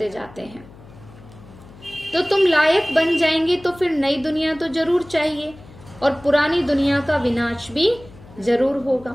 जाते हैं। तो तुम लायक बन जाएंगे तो फिर नई दुनिया तो जरूर चाहिए और पुरानी दुनिया का विनाश भी जरूर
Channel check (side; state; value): left; noise; hum, 21 dB below the sound